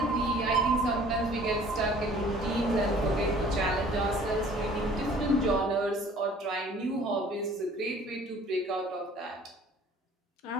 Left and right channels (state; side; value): normal; both; correlation 0.52